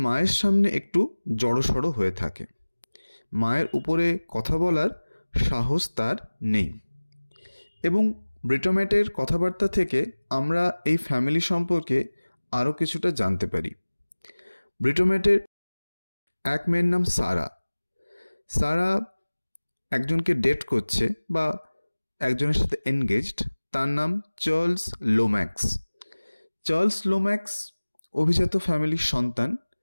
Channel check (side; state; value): both; inverted; correlation -1.00